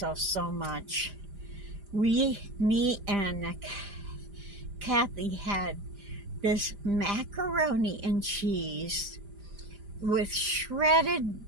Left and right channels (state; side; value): late; left; 4.9 ms